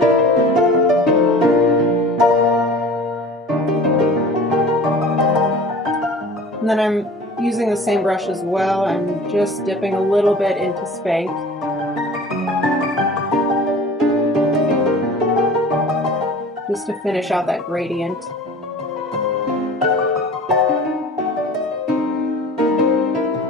And then I'm using the same brush as well. I'm just dipping a little bit into Spanked. Just to finish out that gradient.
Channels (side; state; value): both; normal; correlation 0.42